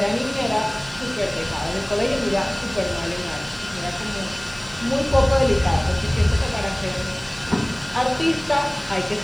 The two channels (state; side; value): noise; right; hiss, 29 dB below the sound